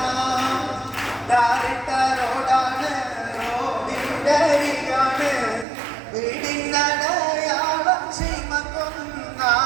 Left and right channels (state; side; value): drops out; left; at 5.7 s